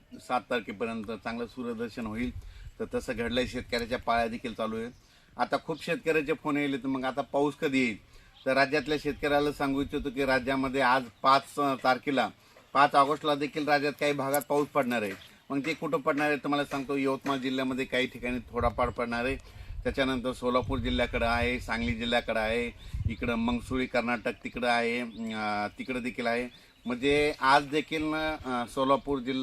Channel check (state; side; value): identical; both; correlation 1.00